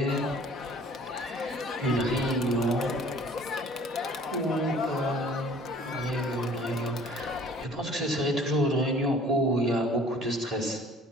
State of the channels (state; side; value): normal; both; correlation 0.51